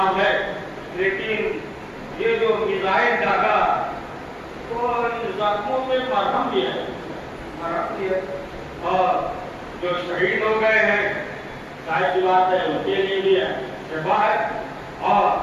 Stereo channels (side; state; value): both; identical; correlation 1.00